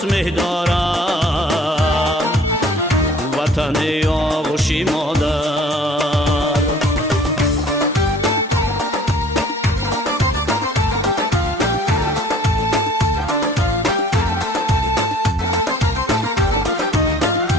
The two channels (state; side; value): normal; both; correlation 0.51